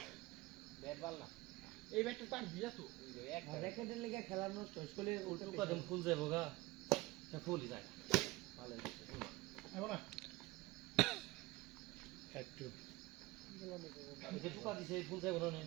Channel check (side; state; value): left; quieter; 20.6 dB